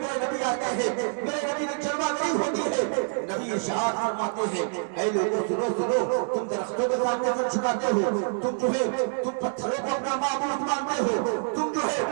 میرے نبی آتے ہیں، میرے نبی کی جلوہ گری ہوتی ہے۔ نبی ارشاد فرماتے ہیں اے لوگوں سنو سنو، تم درختوں کے سامنے سر جھکاتے ہو، تم جو ہے تم پتھروں کو اپنا معبود مانتے ہو، تم جو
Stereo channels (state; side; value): silent; left; digital silence